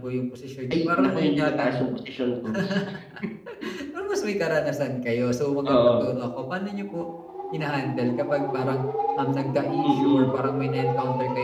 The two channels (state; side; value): identical; both; correlation 1.00